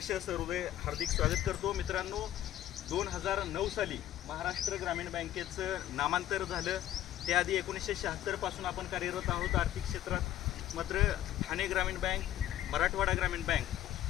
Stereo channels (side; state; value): right; quieter; 12.8 dB